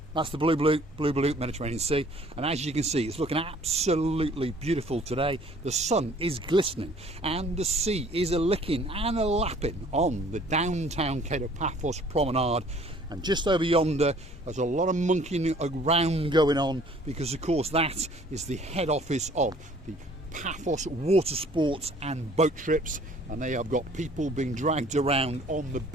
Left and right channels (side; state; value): both; normal; correlation 0.55